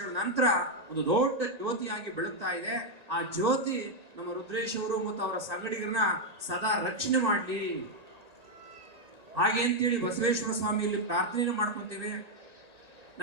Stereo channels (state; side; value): late; left; 1.9 ms